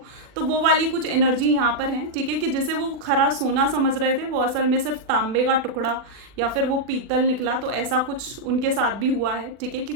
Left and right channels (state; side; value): late; left; 40 ms